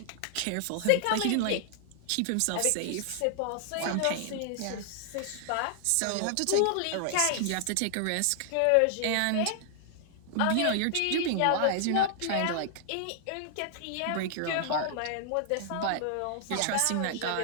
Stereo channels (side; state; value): both; different; correlation -0.01